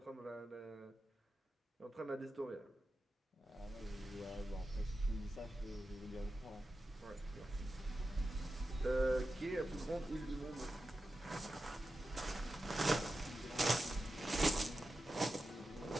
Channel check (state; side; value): normal; both; correlation 0.92